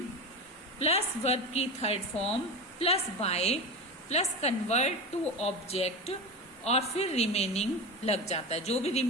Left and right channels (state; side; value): normal; both; correlation 0.24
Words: plus verb की third form plus by plus convert to object और फिर रिमेनिंग लग जाता है। जो भी